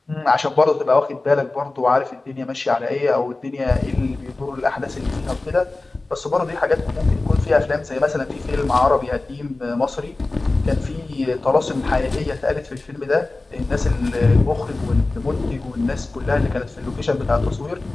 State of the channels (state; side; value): quieter; right; 3.2 dB